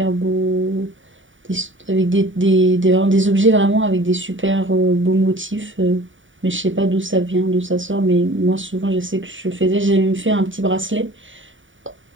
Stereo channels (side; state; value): left; late; 0.56 ms